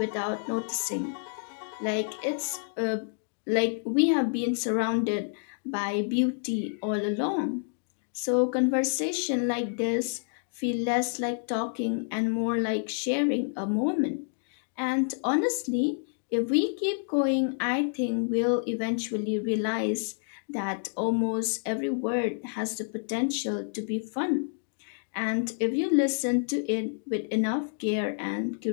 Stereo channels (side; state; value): right; silent; digital silence